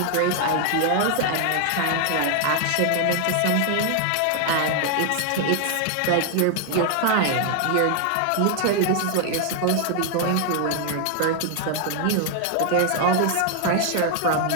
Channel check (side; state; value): both; different; correlation 0.00